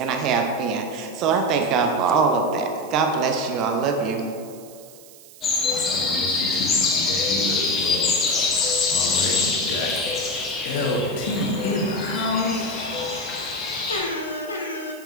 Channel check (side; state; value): right; noise; hiss, 21 dB below the sound